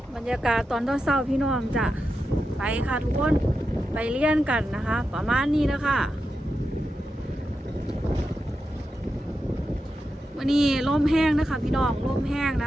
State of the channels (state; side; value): normal; both; correlation 0.89